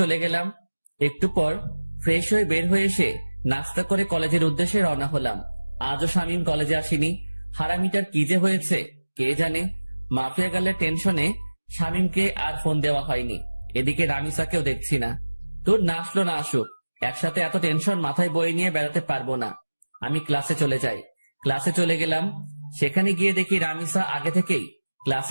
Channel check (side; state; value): both; inverted; correlation -1.00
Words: গেলাম। একটু পর ফ্রেশ হয়ে বের হয়ে এসে নাস্তা করে কলেজের উদ্দেশ্যে রওনা হলাম। আজও শামীম কলেজে আসেনি। হারামিটার কি যে হয়েছে কে জানে। মাফিয়া গার্লের টেনশনে শামীমকে আর ফোন দেওয়া হয়নি। এদিকে রামিসাকেও দেখছি না। তোর না আসলো না আসুক, একসাথে এত টেনশন মাথায় বয়ে নিয়ে বেড়াতে পারবো না। আমি ক্লাসে চলে যাই। ক্লাসে চলে গেলাম। সেখানে গিয়ে দেখি রামিসা আগে থেকেই